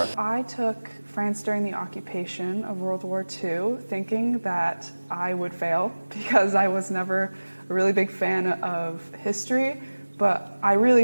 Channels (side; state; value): both; inverted; correlation -1.00